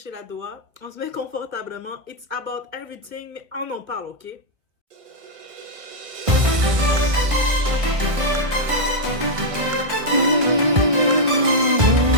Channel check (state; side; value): late; left; 1.6 ms